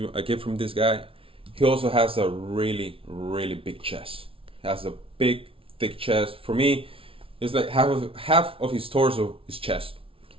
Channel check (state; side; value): late; left; 0.26 ms